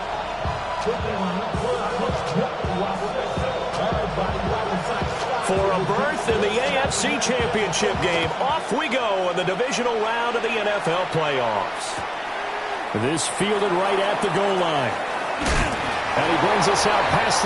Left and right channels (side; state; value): both; identical; correlation 1.00